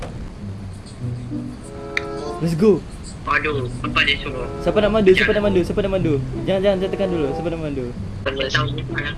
Let's go. Aduh, apa dia suruh? Siapa nak mandu? Siapa nak mandu? Siapa nak mandu? Jangan tekan dulu. Siapa nak mandu? Kita tahu kalau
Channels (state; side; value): identical; both; correlation 1.00